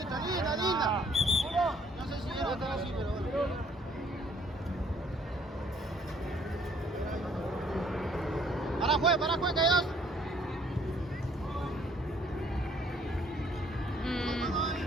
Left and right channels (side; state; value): both; normal; correlation 0.62